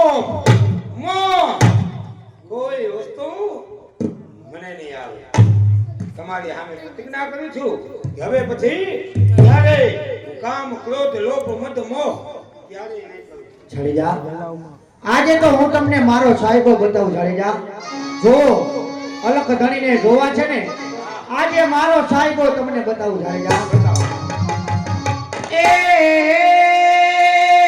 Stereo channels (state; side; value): identical; both; correlation 1.00